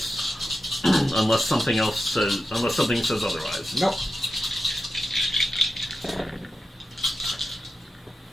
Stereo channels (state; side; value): normal; both; correlation 0.90